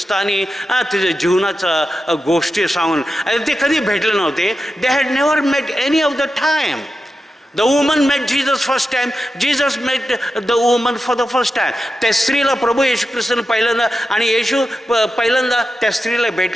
तिच्या जीवनाचा गोष्टी सांगून. ते कधी भेटले नव्हते. They had never met any of the time. The woman met Jesus first time. Jesus met the woman for the first time. त्या स्त्रीला प्रभू येशू ख्रिस्ताने पहिल्यांदा आणि येशू पहिल्यांदा त्या स्त्रीला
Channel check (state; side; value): normal; both; correlation 0.90